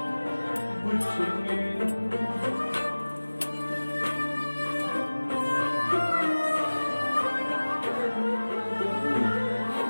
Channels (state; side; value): inverted; both; correlation -1.00